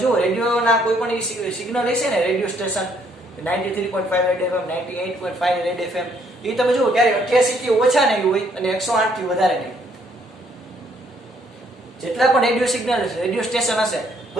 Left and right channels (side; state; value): both; normal; correlation 0.67